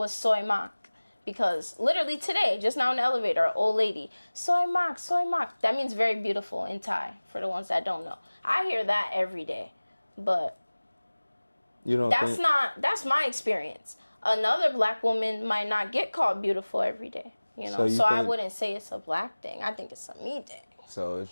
soy mak. Because literally today, just now in the elevator, an old lady, soy mak, soy mak. That means very beautiful in Thai, for the ones that don't know. I hear that every day. But You don't think... that's my experience. Another black woman might not get called beautiful every day, you know. So I wouldn't say it's a black thing. I think it's a me thing. So it's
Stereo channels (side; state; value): both; inverted; correlation -1.00